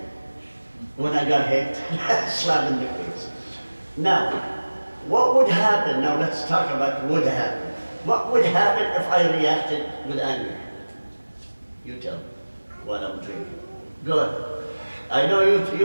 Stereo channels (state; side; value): inverted; both; correlation -1.00